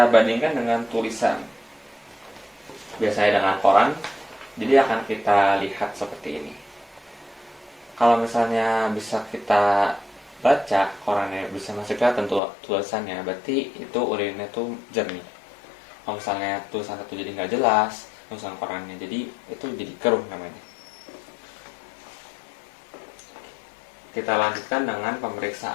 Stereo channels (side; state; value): right; drops out; at 12.4 s